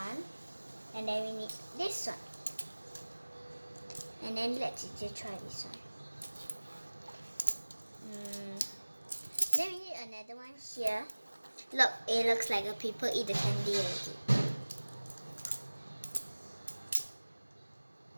And then we need this one. And then let's just try this one. Then we need another one here. Look, it looks like a people eat the candy already.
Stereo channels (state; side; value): inverted; both; correlation -1.00